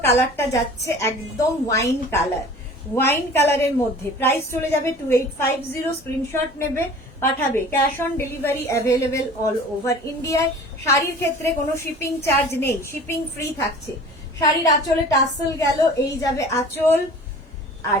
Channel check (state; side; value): normal; both; correlation 0.43